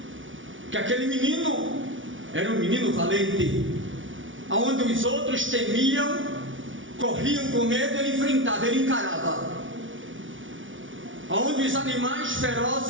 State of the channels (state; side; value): late; left; 0.56 ms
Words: que aquele menino era um menino valente, aonde os outros temiam, corriam com medo, ele enfrentava, ele encarava. Aonde os animais